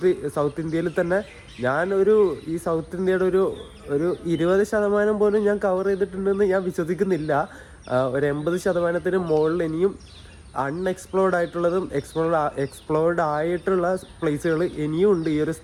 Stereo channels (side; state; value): both; identical; correlation 1.00